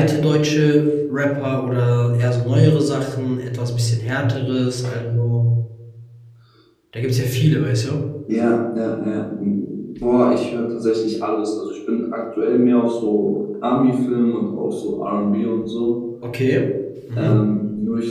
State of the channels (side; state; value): both; identical; correlation 1.00